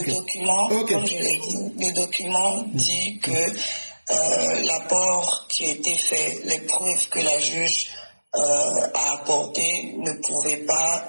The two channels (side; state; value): both; inverted; correlation -1.00